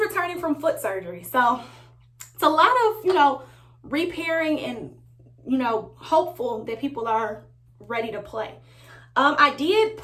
from foot surgery. So it's a lot of, repairing and, hopeful that people are ready to play. I did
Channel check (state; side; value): identical; both; correlation 1.00